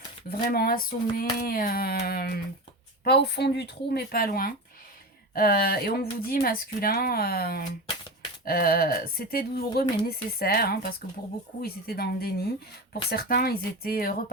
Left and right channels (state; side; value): normal; both; correlation 0.25